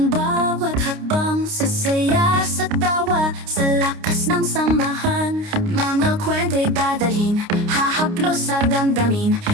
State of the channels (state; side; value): late; left; 29 ms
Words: bawat hakbang sa saya, sa tawa, sa lakas ng samahan. Mga kwento'y dadalhin, hahaplos sa damdamin.